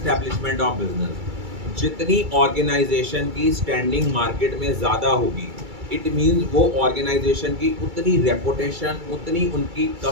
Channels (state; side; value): late; left; 2.3 ms